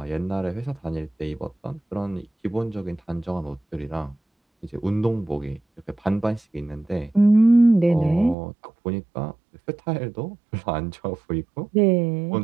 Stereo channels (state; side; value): drops out; left; at 8.3 s